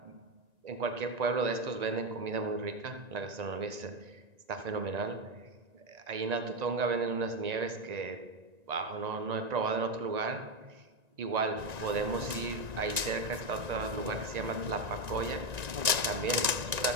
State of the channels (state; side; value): late; left; 1.9 ms